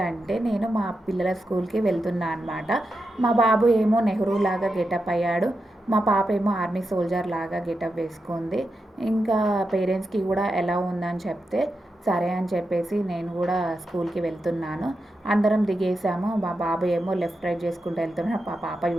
నేను మా పిల్లల స్కూల్కి వెళ్తున్నా అనమాట. మా బాబు ఏమో నెహ్రూ లాగా గెటప్ అయ్యాడు, మా పాప ఏమో ఆర్మీ సోల్జర్ లాగా గెటప్ వేసుకుంది. ఇంకా పేరెంట్స్కి కూడా ఎలా ఉందని చెప్తే సరే అని చెప్పేసి నేను కూడా స్కూల్కి వెళ్తున్నాను. అందరం దిగేసాము. మా బాబు ఏమో లెఫ్ట్ రైట్ చేసుకుంటూ వెళ్తున్నాడు, మా పాప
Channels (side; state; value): both; normal; correlation 0.88